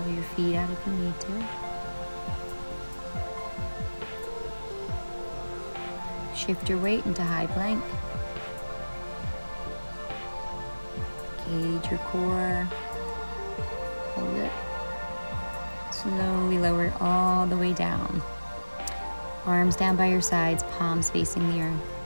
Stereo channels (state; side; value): inverted; both; correlation -1.00